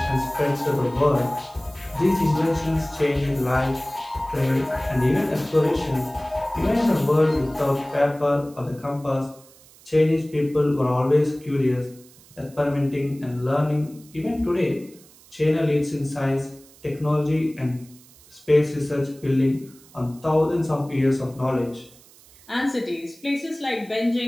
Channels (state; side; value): noise; right; hiss, 25 dB below the sound